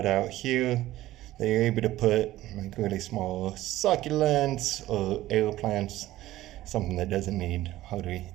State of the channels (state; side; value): quieter; left; 15.5 dB